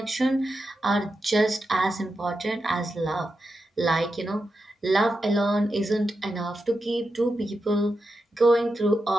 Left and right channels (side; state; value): both; normal; correlation 0.88